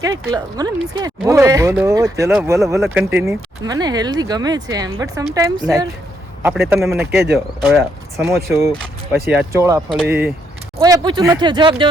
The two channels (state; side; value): normal; both; correlation 0.75